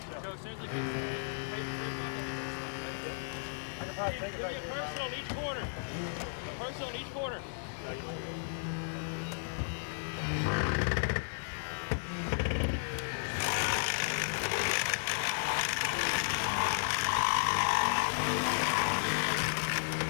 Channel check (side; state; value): right; silent; 55 dB below the other